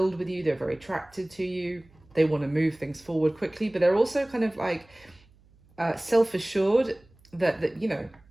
with you. They're very attracted to you. They want to move things forward quickly, but they're also kind of like self-assured that, you know,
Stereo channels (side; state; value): right; noise; hum, 29 dB below the sound